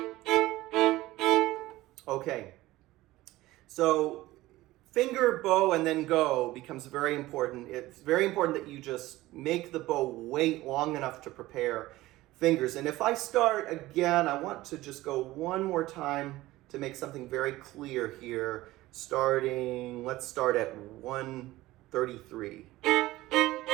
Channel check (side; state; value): left; quieter; 17.5 dB